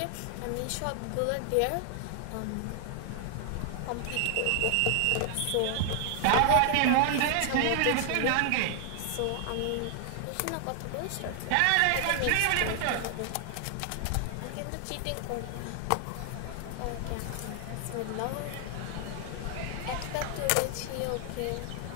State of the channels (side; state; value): both; different; correlation 0.00